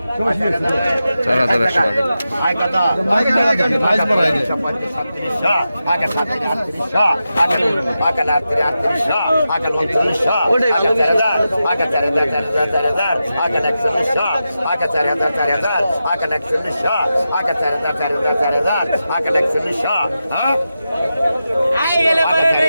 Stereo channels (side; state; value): both; inverted; correlation -0.90